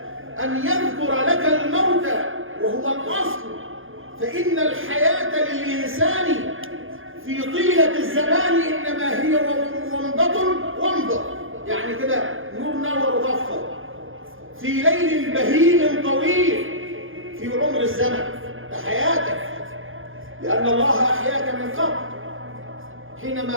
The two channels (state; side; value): late; left; 0.59 ms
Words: أن يذكر لك الموت وهو الأصل. فإن الحياة للإنسان في طيلة الزمان إنما هي ومضة، يعني كده نور نور ضفة في ليل بهيم طويل في عمر الزمن. ده حياتك، لأن الله أحياك من قبل.